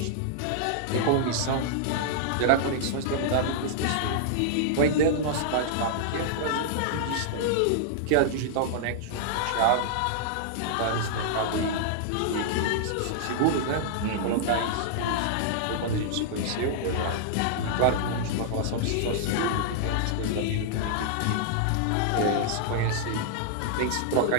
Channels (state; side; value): different; both; correlation -0.01